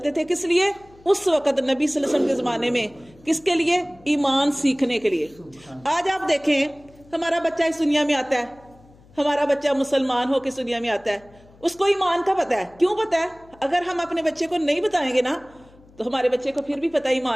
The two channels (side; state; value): left; noise; hum, 26 dB below the sound